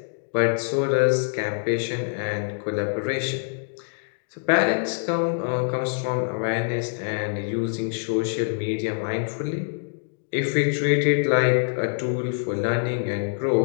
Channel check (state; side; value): silent; right; digital silence